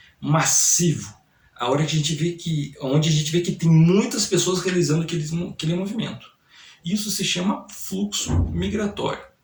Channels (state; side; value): identical; both; correlation 1.00